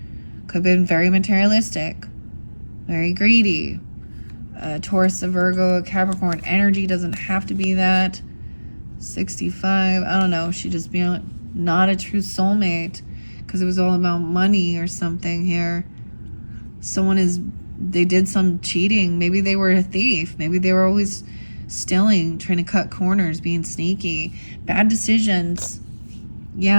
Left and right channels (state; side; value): inverted; both; correlation -1.00